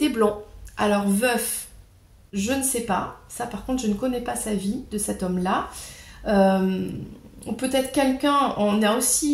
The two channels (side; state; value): both; identical; correlation 1.00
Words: blond. Alors, veuf, je ne sais pas. Ça, par contre, je ne connais pas sa vie de cet homme-là. Ou peut-être quelqu'un, on est